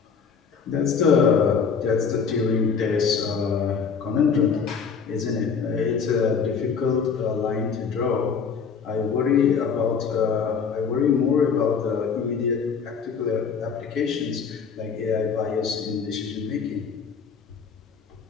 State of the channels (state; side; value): quieter; right; 6.1 dB